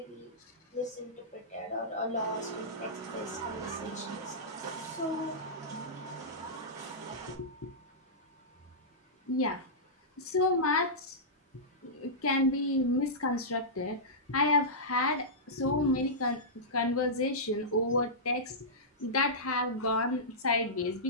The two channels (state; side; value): normal; both; correlation -0.15